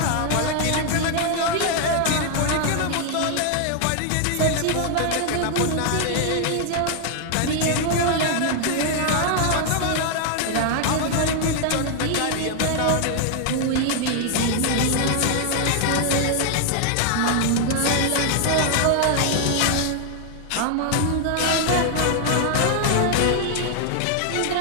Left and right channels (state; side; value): different; both; correlation 0.00